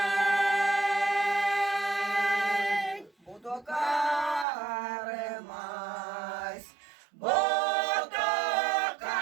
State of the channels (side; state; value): left; drops out; at 4.5 s